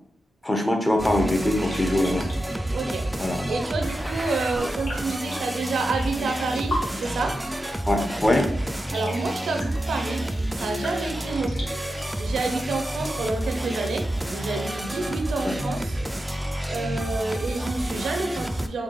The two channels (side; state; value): both; normal; correlation 0.90